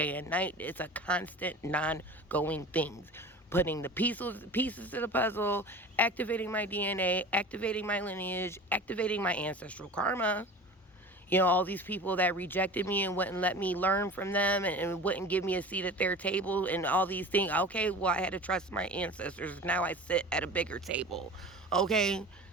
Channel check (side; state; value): both; normal; correlation 0.36